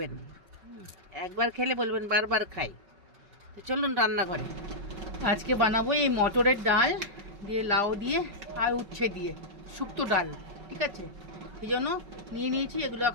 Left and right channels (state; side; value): late; left; 5.3 ms